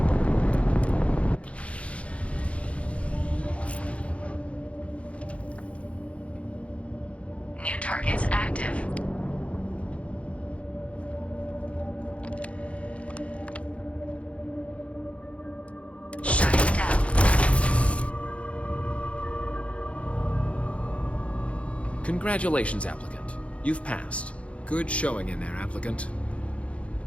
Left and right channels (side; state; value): right; late; 0.062 ms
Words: New targets active. Shutting down. Congratulations, applicant. You've passed. Good showing in there, applicant.